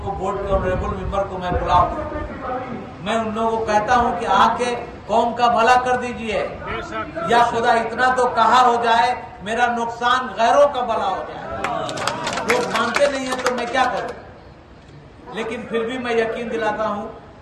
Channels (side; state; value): both; identical; correlation 1.00